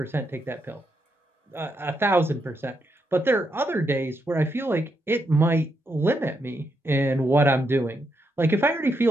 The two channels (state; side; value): normal; both; correlation 0.81